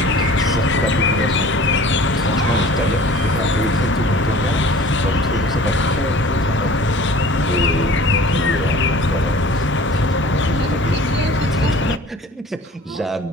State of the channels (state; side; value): normal; both; correlation 0.46